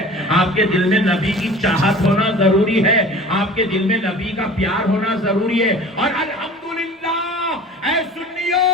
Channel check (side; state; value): both; normal; correlation 0.42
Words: آپ کے دل میں نبی کی چاہت ہونا ضروری ہے, آپ کے دل میں نبی کا پیار ہونا ضروری ہے. اور الحمدللہ اے سنیو,